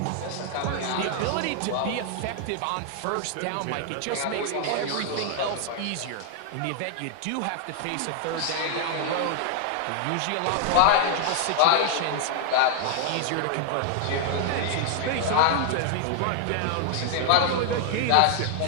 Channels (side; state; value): both; different; correlation 0.00